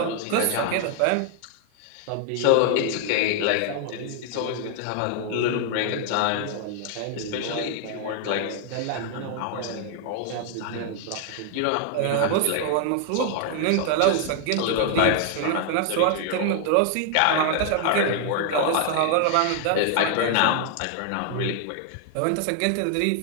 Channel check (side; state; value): both; different; correlation 0.00